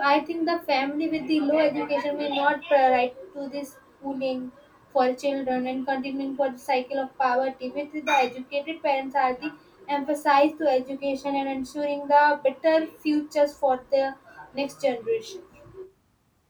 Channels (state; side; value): identical; both; correlation 1.00